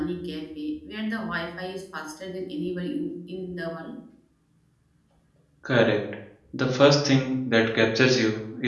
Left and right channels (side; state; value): both; identical; correlation 1.00